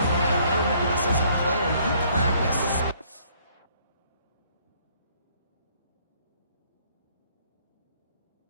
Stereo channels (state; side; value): inverted; both; correlation -0.63